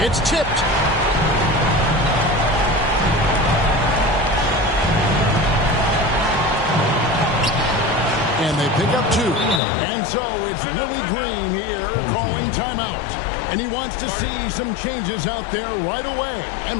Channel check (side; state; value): right; drops out; at 9.6 s